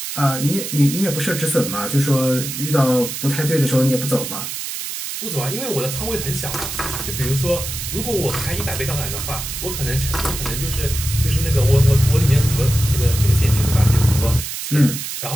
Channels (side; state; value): right; noise; hiss, 6 dB below the sound